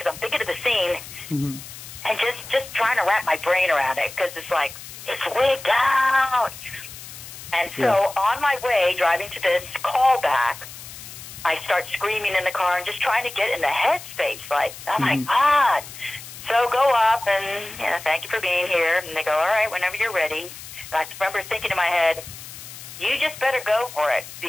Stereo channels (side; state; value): left; noise; hiss, 14 dB below the sound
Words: I'm thinking of the scene, and just trying to wrap my brain around it, because it's like, it's wigged out. And so on my way driving to this callback, I start screaming in the car and just trying to get in the headspace, like, oh my God. So go up and, thank you for being here. And they go, all right, whenever you're ready. And I remember thinking in my head, you just better go for it,